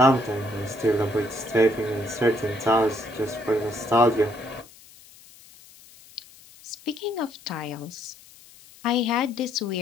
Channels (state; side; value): noise; left; hiss, 23 dB below the sound